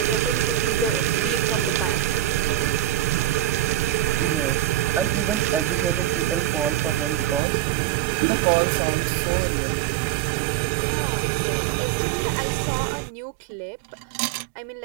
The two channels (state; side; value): drops out; left; at 7.4 s